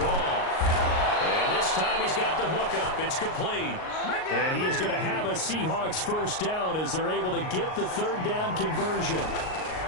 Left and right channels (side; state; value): right; late; 38 ms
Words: And this time he's got the hook up. It's complete. And he is going to have a Seahawks 1st down as they're able to get the 3rd down conversion.